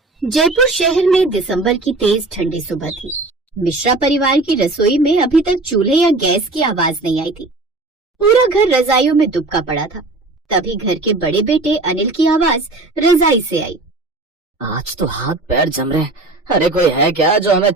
जयपुर शहर में दिसंबर की तेज ठंडी सुबह थी। मिश्रा परिवार की रसोई में अभी तक चूल्हे या गैस की आवाज नहीं आई थी। पूरा घर रजाइयों में दुबका पड़ा था। तभी घर के बड़े बेटे अनिल की आवाज रजाई से आई। आज तो हाथ पैर जम रहे। अरे कोई है क्या जो हमें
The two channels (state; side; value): quieter; left; 3.1 dB